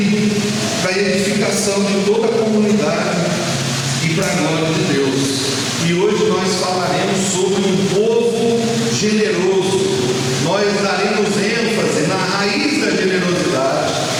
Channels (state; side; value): identical; both; correlation 1.00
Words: para a edificação de toda a comunidade e para a glória de Deus. E hoje nós falaremos sobre um povo generoso. Nós daremos ênfase na raiz da generosidade,